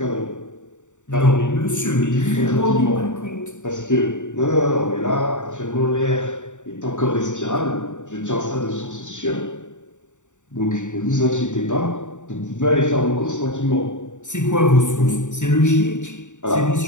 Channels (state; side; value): late; right; 0.85 ms